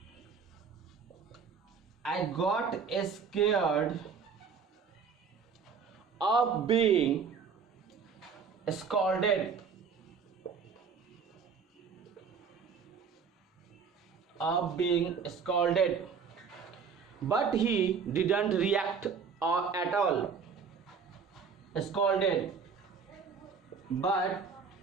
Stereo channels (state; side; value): quieter; left; 6.0 dB